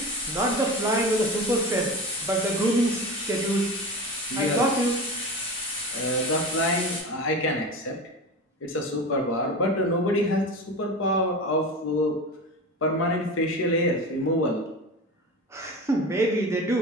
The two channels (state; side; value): normal; both; correlation 0.28